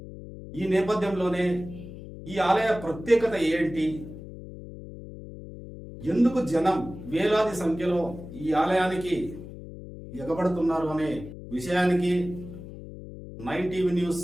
ఈ నేపథ్యంలోనే ఈ ఆలయ ప్రత్యేకత ఏంటి, ఎందుకు జనం వేలాది సంఖ్యలో ఈ ఆలయానికి ఎగబడుతున్నారు అనే విషయానికి 9 టీవీ న్యూస్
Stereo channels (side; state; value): left; noise; hum, 13 dB below the sound